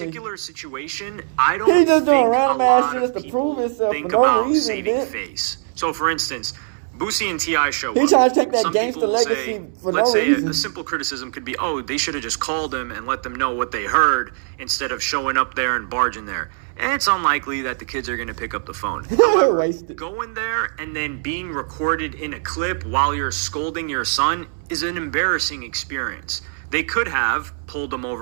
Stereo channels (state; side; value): silent; left; 65 dB below the other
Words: situation, I don't He just doing think random a ass lot shit of just to prove people himself think for no about reason, saving man. face. So, for instance, Boosie and T.I. show He up. trying to take that Some gangster people will legacy say, for let's no say reason. a simple criticism could be, they should have just called him and let them know what they heard instead of showing up there and barging there. And it's unlikely that the kids are going to pick up the phone. However, Wasted. going there and then being recorded in a clip while you're scolding your son is an embarrassing experience. They could have pulled him